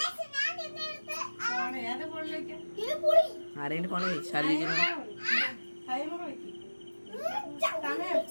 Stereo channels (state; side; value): inverted; both; correlation -1.00